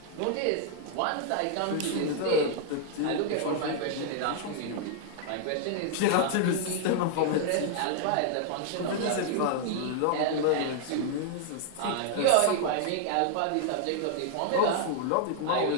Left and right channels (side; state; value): both; different; correlation 0.00